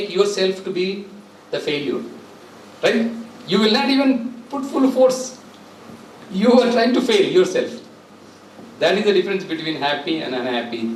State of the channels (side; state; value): both; identical; correlation 1.00